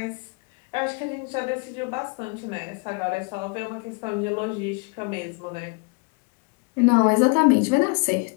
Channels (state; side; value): quieter; right; 31.6 dB